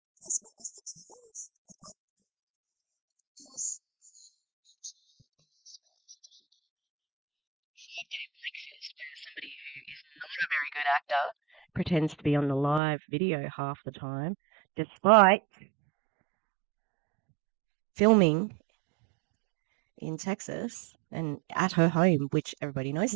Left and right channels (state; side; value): drops out; left; at 12.8 s